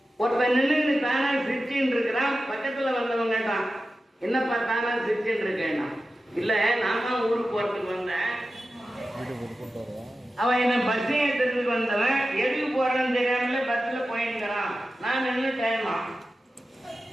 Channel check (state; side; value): normal; both; correlation 0.93